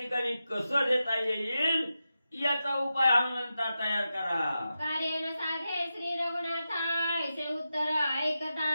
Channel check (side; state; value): both; inverted; correlation -0.90